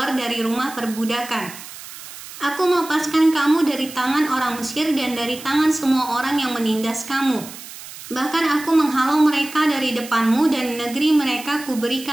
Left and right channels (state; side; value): noise; right; hiss, 14 dB below the sound